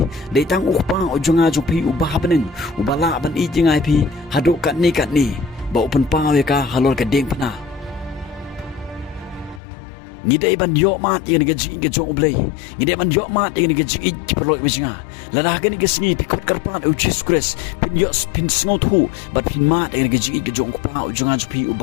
dei tang ukpa ujong ajong pi ubah beneng ubala ban i jengai pi hado kat ni ba open pawe ka halor geding penang ngidai ban yo mat yang gaji ke jong blai ngidai ban yo mat yang gaji ki perlo bijinga lada gani ke singi pikot karpan ucis kres pin yo pin sngot hu bat pin mat yang gaji ke jong pa ujungan pi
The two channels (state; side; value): drops out; right; at 9.6 s